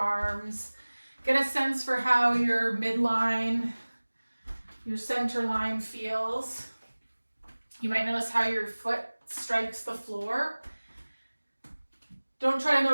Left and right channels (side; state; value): both; inverted; correlation -1.00